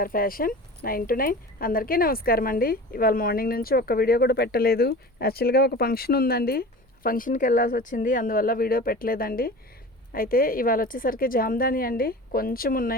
fashion 9 to 9. అందరికీ నమస్కారం అండి. ఇవాళ మార్నింగ్ నుంచి ఒక్క వీడియో కూడా పెట్టలేదు. యాక్చువల్గా ఒక ఫంక్షన్ ఉందండి, ఫంక్షన్కి వెళ్ళాల్సి వచ్చింది, అందువల్ల వీడియో పెట్టలేదండి. అయితే ఇవాళ వచ్చేసరికి జామ్దాని అండి, కొంచెం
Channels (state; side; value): normal; both; correlation 0.36